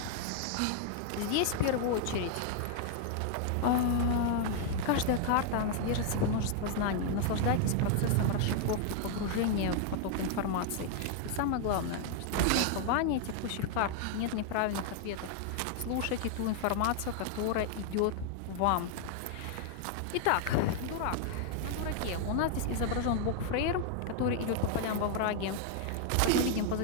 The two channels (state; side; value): different; both; correlation 0.00